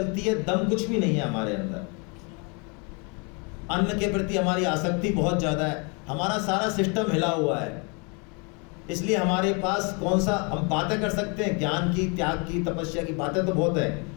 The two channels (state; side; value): quieter; right; 33.4 dB